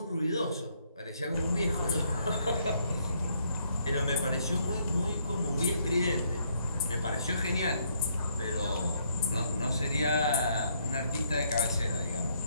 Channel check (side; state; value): both; inverted; correlation -0.70